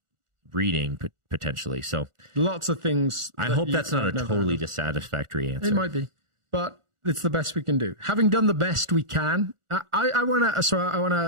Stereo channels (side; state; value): left; late; 1.4 ms